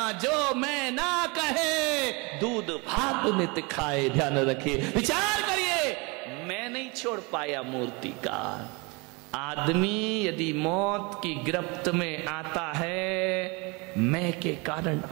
जो मैं ना कहे दूध भात नित खाए। ध्यान रखिए, विचार करिए, मैं नहीं छोड़ पाया मूर्तिकार। आदमी यदि मौत की गिरफ्त में आता है, मैं के कारण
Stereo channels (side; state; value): left; quieter; 28.4 dB